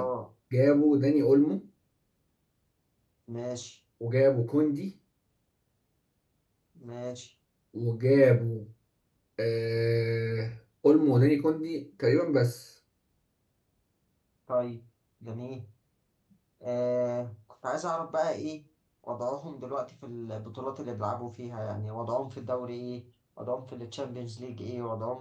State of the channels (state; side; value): identical; both; correlation 1.00